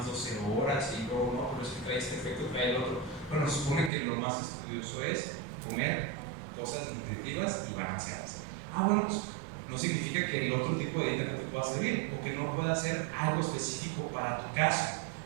12 horas y luego no, pero es que trae este efecto, trae el otro. Bueno, se supone que lo más estudioso es comer cosas nutritivas y balanceadas. Bueno, pues no significa que el otro tipo de dieta no te pueda servir o que no pueda ser algo específico para tu caso,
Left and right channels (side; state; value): left; drops out; at 3.9 s